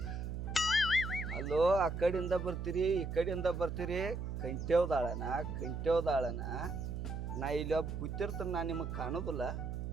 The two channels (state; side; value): noise; right; hum, 4 dB below the sound